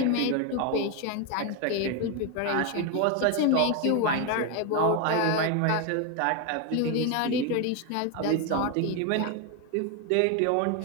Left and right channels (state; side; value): different; both; correlation 0.02